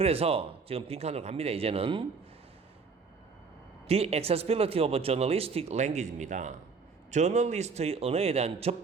지금 빈칸으로 갑니다. 이제는 The accessibility of journalistic language입니다. 저널리스트의 언어에 대한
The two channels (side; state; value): left; quieter; 5.0 dB